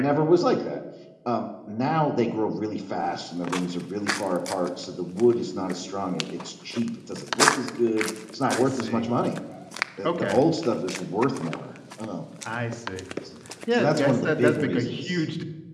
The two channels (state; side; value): identical; both; correlation 1.00